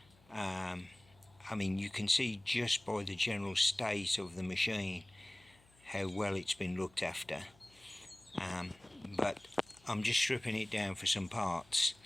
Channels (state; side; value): noise; left; hum, 28 dB below the sound